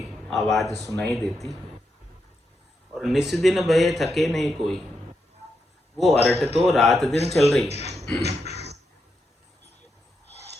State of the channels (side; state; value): both; normal; correlation 0.84